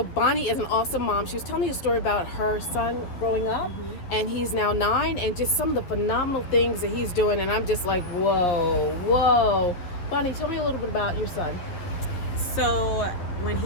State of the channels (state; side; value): late; right; 11 ms